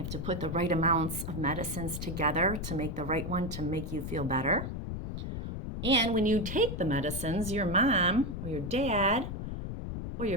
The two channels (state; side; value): noise; left; rumble, 5 dB below the sound